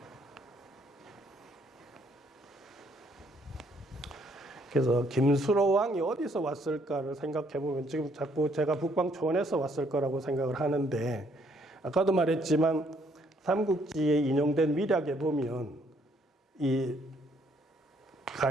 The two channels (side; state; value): both; normal; correlation 0.67